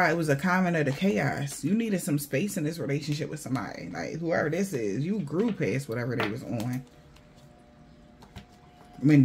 it was a comment of the chaos. You needed some space in this relationship with somebody. Like, whoever this is, you grew past whatever they was on. I mean,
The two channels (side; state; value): both; identical; correlation 1.00